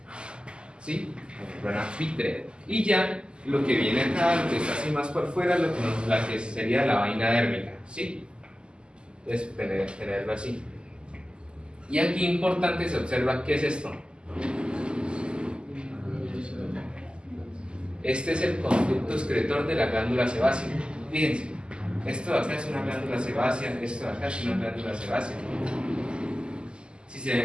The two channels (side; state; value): left; late; 0.050 ms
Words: ¿sí? La membrana vítrea. Y ya lo que viene acá, lo que está así más por fuera, la que sería la vaina dérmica, ¿sí? Entonces, tenerlo así. Y aquí importante se observa qué es esto. Este es el conducto excretor de la glándula sebácea. Fíjense, esto de acá es una glándula sebácea, esto de acá es una glándula sebácea.